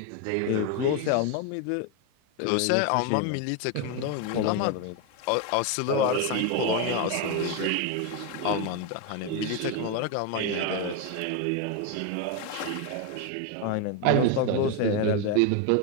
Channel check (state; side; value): different; both; correlation 0.02